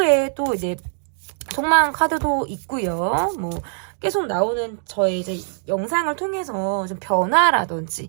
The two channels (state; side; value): silent; left; digital silence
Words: 또 이제 속마음 카드도 있고요. 뭐 계속 나오는 저의 이제 영상을 통해서 좀 변화라든지